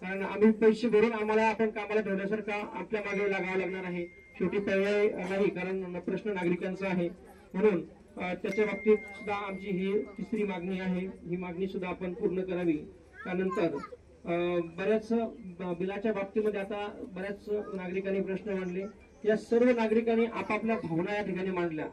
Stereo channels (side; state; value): both; identical; correlation 1.00